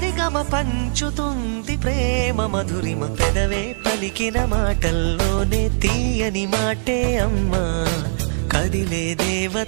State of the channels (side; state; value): left; silent; 58 dB below the other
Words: పంచుతుంది ప్రేమ మధురిమ. పెదవే పలికిన మాటల్లోనే తీయని మాటే అమ్మా, కదిలే